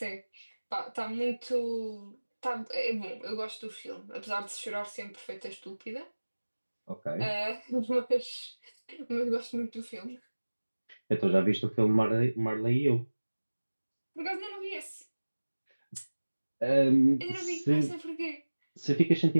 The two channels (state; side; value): inverted; both; correlation -1.00